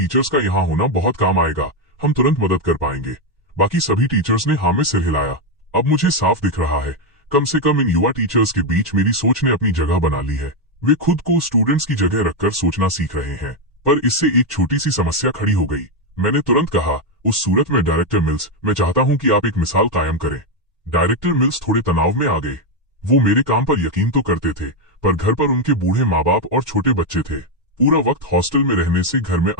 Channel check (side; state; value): both; normal; correlation 0.05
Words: का यहाँ होना बहुत काम आएगा। हम तुरंत मदद कर पाएंगे। बाकी सभी टीचर्स ने हाँ में सिर हिलाया। अब मुझे साफ दिख रहा है, कम से कम इन युवा टीचर्स के बीच मेरी सोच ने अपनी जगह बना ली है। वे खुद को स्टूडेंट्स की जगह रखकर सोचना सीख रहे हैं। पर इससे एक छोटी सी समस्या खड़ी हो गई। मैंने तुरंत कहा, उस सूरत में डायरेक्टर मिल्स, मैं चाहता हूं कि आप एक मिसाल कायम करें। डायरेक्टर मिल्स थोड़े तनाव में आ गए। वो मेरे काम पर यकीन तो करते थे, पर घर पर उनके बूढ़े माँ बाप और छोटे बच्चे थे। पूरा वक्त हॉस्टल में रहने से घर में